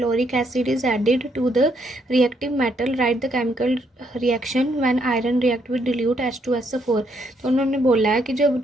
acid is added to the reactive metal, write the chemical reaction when iron react with dilute H2SO4। तो उन्होंने बोला है कि जब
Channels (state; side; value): normal; both; correlation 0.73